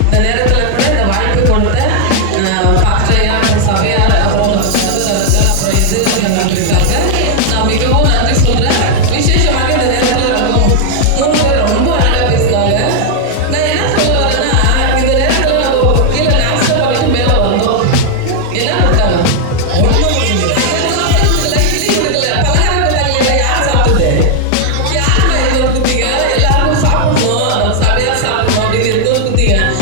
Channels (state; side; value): different; both; correlation -0.01